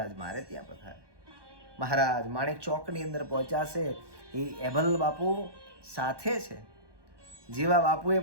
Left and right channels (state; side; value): late; left; 1.2 ms